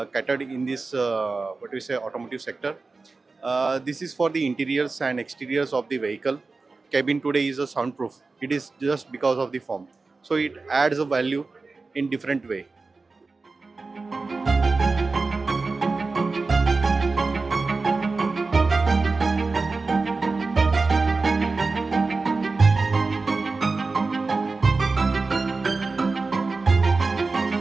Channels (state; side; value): quieter; left; 3.9 dB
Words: catered in this what we say automotive sector. This is for the interiors and exteriors of the vehicle. Cabin today is a soundproof. It is just because of the form. So it adds a value in different way.